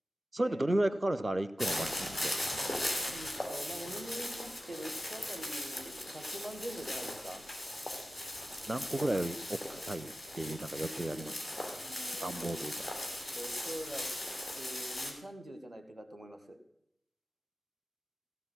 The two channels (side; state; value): both; normal; correlation 0.94